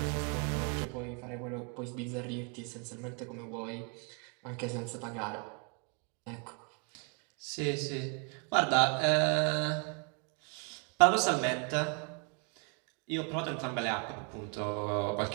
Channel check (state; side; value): quieter; left; 37.4 dB